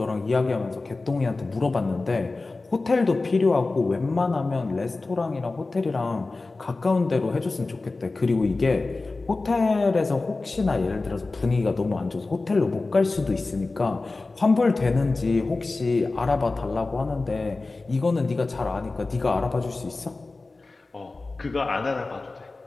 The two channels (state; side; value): quieter; right; 3.5 dB